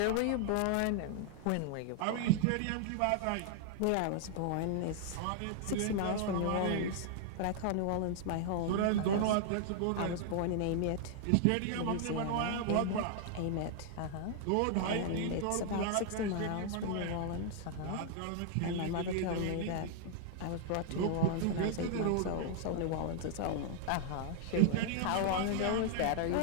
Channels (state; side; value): different; both; correlation 0.00